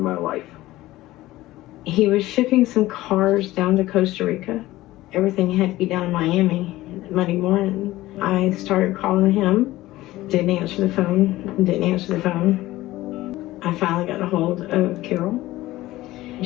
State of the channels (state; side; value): quieter; right; 17.0 dB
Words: life. He was shipping some cars down to Costa Rica. Everything had to be down in Miami Monday morning. I started calling him, didn't answer the phone. I finally got a hold of Carole.